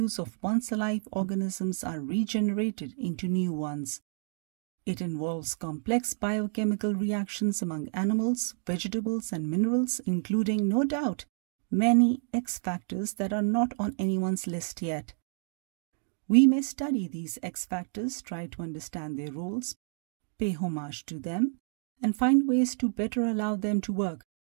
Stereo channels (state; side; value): silent; left; 58 dB below the other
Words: of once alive organisms are regenerated into new ones. It involves complex biochemical reactions among animals, vegetables, and minerals, including, no doubt, many X factors that are not on anyone's list yet. We may study these X factors, try to understand their roles, pay homage to them, and find ways to better allow them to work.